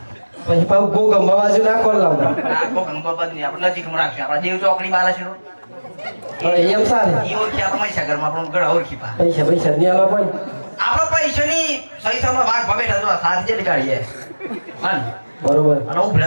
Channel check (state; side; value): inverted; both; correlation -1.00